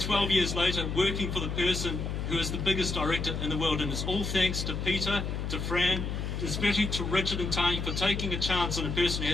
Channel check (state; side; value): noise; left; hum, 3 dB below the sound